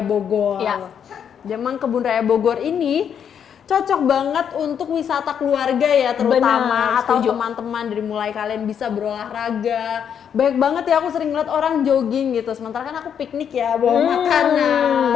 Bogor. Iya. Memang Kebun Raya Bogor ini cocok banget untuk wisata keluarga ya, terutama atau teman-teman, dari mulai kalian bisa berolahraga. Banyak banget ya, aku sering ngeliat orang jogging gitu, sementara kan aku piknik ya, bawa makanan,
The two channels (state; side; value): quieter; right; 8.1 dB